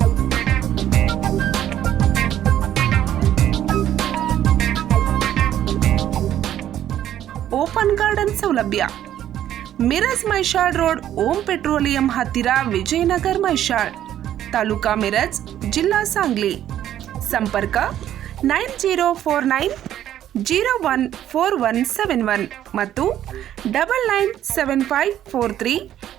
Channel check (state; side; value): quieter; left; 11.5 dB